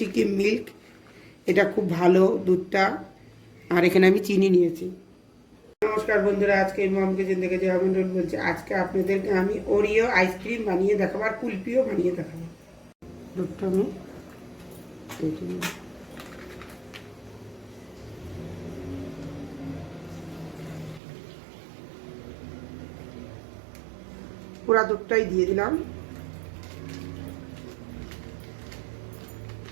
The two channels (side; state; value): left; drops out; at 21.0 s